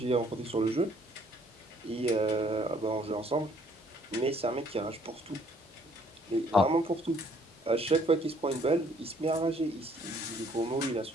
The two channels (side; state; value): both; normal; correlation 0.62